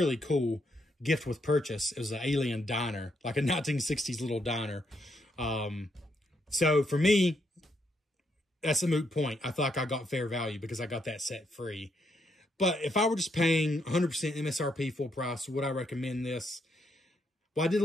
cool gift with purchase. It was an alien diner, like a 1960s little diner. So for me, that's a moot point. I feel like I got fair value because I got that set free. But if I were just paying 100% MSRP full price, would I recommend this? Well, I did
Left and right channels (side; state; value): both; normal; correlation 0.77